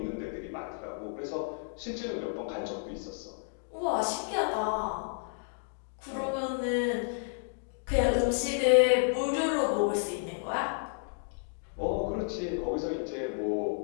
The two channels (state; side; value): silent; right; digital silence